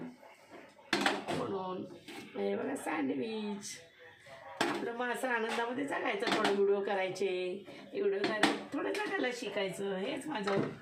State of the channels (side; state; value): both; identical; correlation 1.00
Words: म्हणून हे बघा सँडविच आपलं मग असं आनंदामध्ये जगायचं. थोडं व्हिडिओ करायचे, व्हिडिओ करायचे, थोडं जगायला शिकायचं. हेच माझं